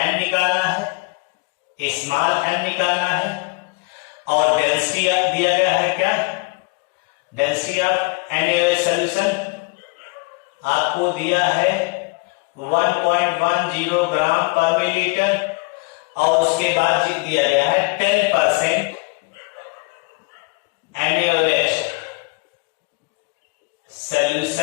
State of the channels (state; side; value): quieter; right; 29.5 dB